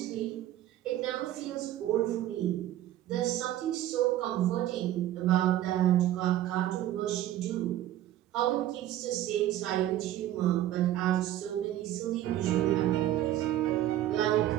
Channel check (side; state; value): left; quieter; 13.2 dB